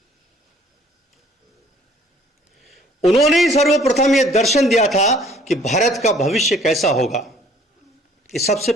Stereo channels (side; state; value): both; normal; correlation 0.57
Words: उन्होंने ही सर्वप्रथम यह दर्शन दिया था कि भारत का भविष्य कैसा होगा, ये सबसे